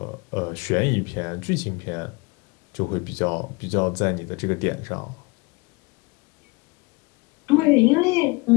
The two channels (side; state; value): right; quieter; 26.2 dB